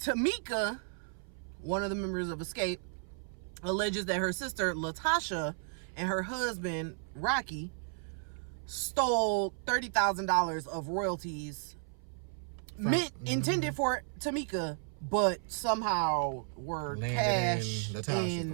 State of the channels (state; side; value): silent; left; 55 dB below the other